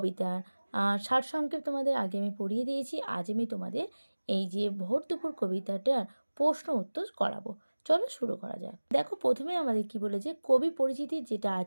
সারসংক্ষেপ তোমাদের আগে আমি পড়িয়ে দিয়েছি। আজ আমি তোমাদের এই যে ভোর দুপুর কবিতাটার প্রশ্ন উত্তর করাবো। চলো শুরু করা যাক। দেখো প্রথমে আমাদের কি বলেছে, কবি পরিচিতি যেটা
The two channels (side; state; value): both; inverted; correlation -1.00